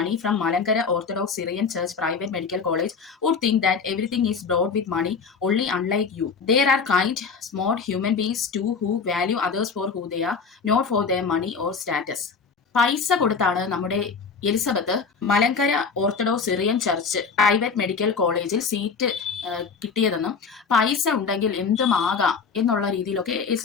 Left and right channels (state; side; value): quieter; right; 5.4 dB